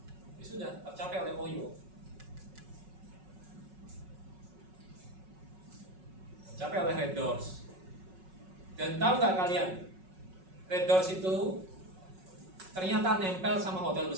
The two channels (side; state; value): left; late; 5.4 ms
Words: Ini sudah tercapai oleh Oyo. Tercapai oleh Red Doors. Dan tahu nggak kalian? Red Doors itu ternyata nempel sama hotel